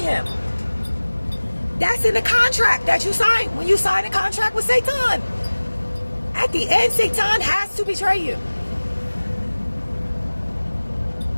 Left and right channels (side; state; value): both; inverted; correlation -1.00